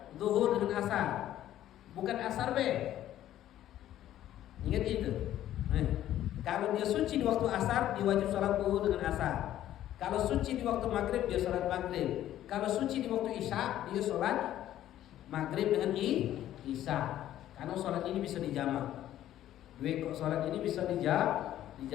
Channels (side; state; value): right; quieter; 12.5 dB